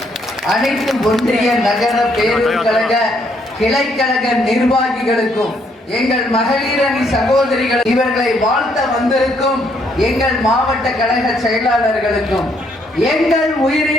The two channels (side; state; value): both; normal; correlation 0.71